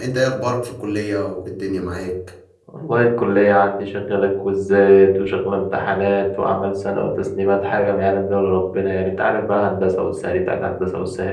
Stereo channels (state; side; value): identical; both; correlation 1.00